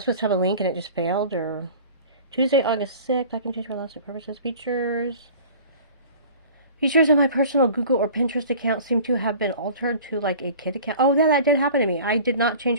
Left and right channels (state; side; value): inverted; both; correlation -0.43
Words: supposed to have a link and it just failed, or Tuesday, August 6th, I can change for lawsuit purposes. Features on my personal Google or Pinterest account seem to have been altered to like a kid account. Oh, that did happen to me. I did not